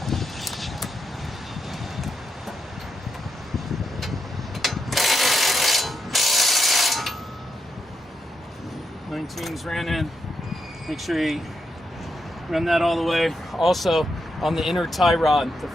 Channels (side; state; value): both; normal; correlation 0.83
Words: Nineteens ran in. Make sure you run that all the way. Also, on the inner tie rod, the